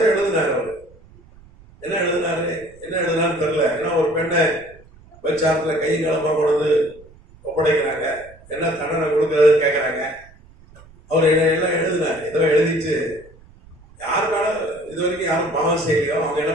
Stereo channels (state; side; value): noise; right; rumble, 25 dB below the sound